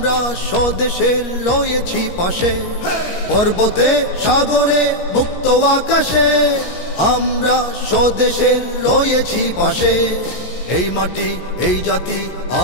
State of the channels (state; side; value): late; right; 17 ms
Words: স্বদেশের রয়েছি পাশে। পর্বতে সাগরে মুক্ত আকাশে, আমরা স্বদেশের রয়েছি পাশে। এই মাটি এই জাতি